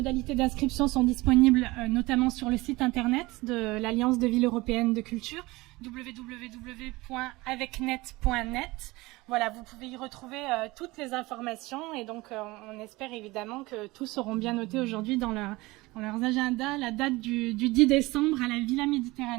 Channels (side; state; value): left; quieter; 21.4 dB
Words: d'inscription sont disponibles notamment sur le site internet de l'Alliance de Villes Européennes de Culture, www.avecnet.net. Voilà, vous pouvez y retrouver toutes les informations et donc on espère évidemment que tous seront bien notés aujourd'hui dans leurs agendas, la date du 10 décembre à la Villa